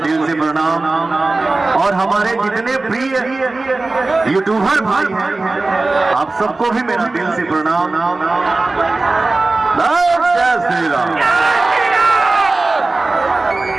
से प्रणाम। और हमारे जितने प्रिय यूट्यूबर भाई हैं, आप सबको भी मेरा दिल से प्रणाम। जय श्री राम।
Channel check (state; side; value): quieter; left; 3.3 dB